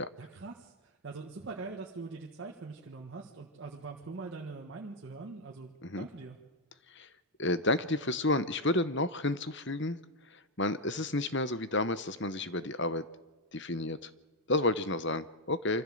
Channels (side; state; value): both; normal; correlation 0.02